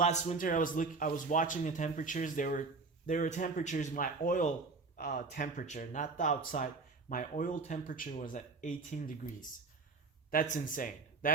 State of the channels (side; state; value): left; quieter; 4.2 dB